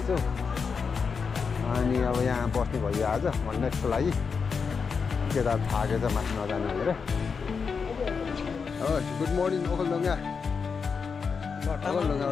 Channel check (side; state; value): right; quieter; 5.6 dB